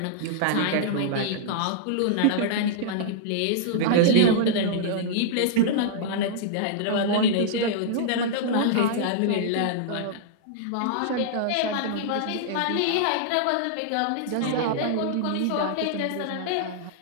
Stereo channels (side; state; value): both; different; correlation -0.02